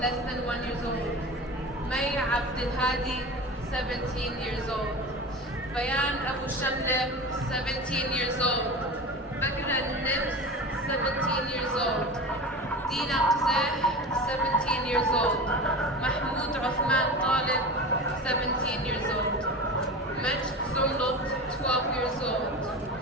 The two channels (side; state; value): both; normal; correlation 0.31